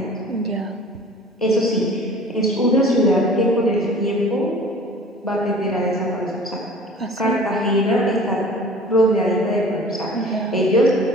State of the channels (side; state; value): both; normal; correlation 0.46